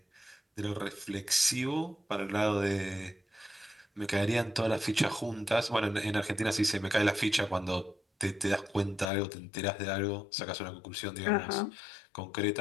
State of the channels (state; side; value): drops out; right; at 9.1 s